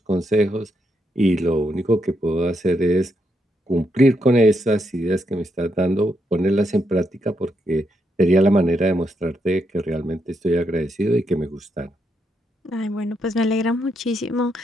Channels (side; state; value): both; normal; correlation 0.80